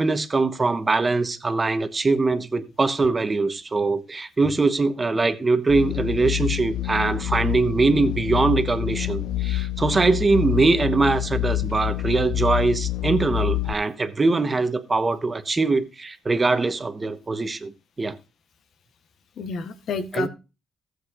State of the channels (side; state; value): both; normal; correlation 0.83